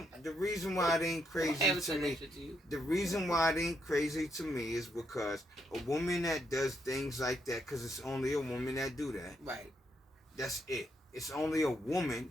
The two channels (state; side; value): normal; both; correlation 0.77